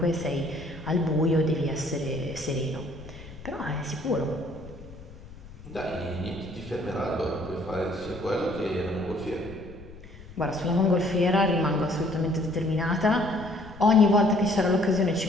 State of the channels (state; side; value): noise; left; rumble, 18 dB below the sound